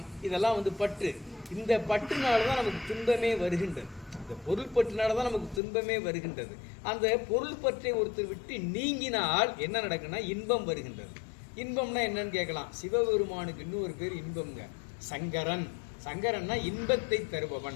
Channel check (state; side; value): drops out; right; at 5.6 s